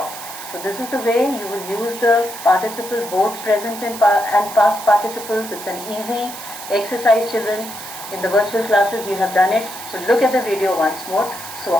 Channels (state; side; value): noise; right; hiss, 12 dB below the sound